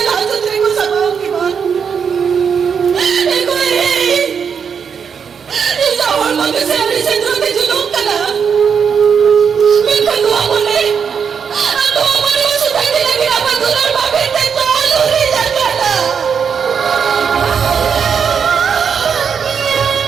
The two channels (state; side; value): quieter; left; 6.7 dB